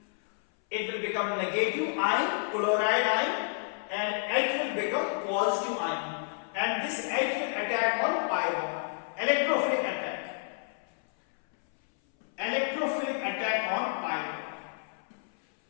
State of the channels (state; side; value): silent; right; 58 dB below the other